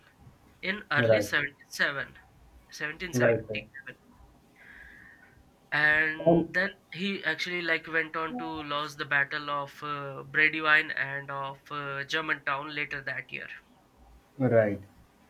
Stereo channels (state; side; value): identical; both; correlation 1.00